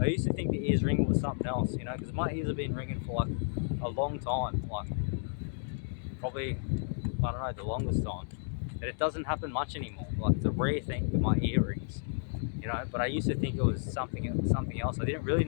I used to think the ears ringing was something else, because my ears have been ringing for like a long time, like probably I don't know, the longest time, that it doesn't happen much anymore. Like, it's a rare thing with my earrings, you know. But I used to think it was something else. I didn't really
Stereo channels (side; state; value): right; silent; digital silence